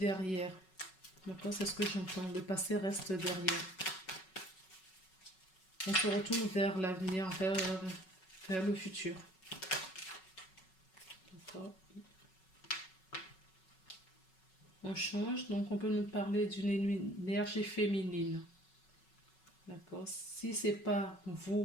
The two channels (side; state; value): right; late; 5.4 ms